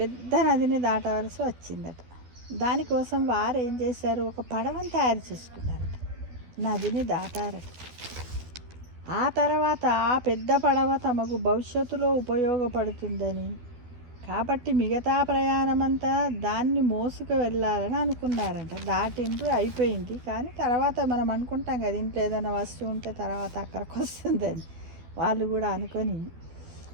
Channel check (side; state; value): left; late; 12 ms